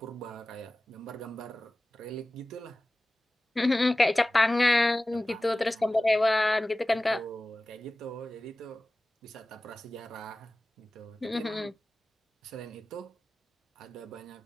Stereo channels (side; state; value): both; normal; correlation 0.97